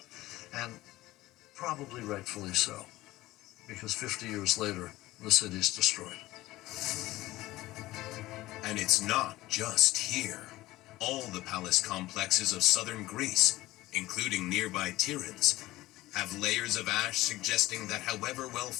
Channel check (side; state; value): right; quieter; 17.4 dB